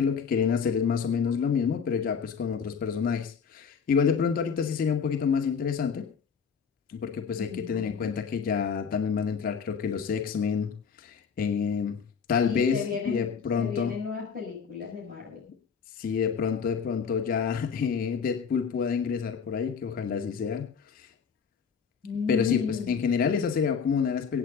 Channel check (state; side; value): quieter; right; 6.3 dB